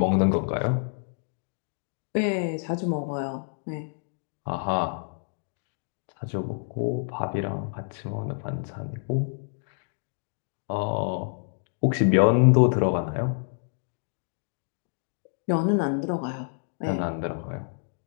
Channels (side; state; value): right; silent; digital silence